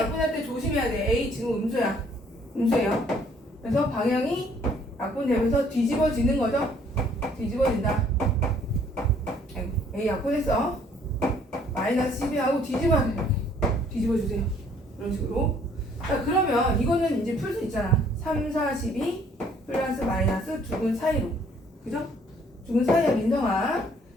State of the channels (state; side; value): normal; both; correlation 0.61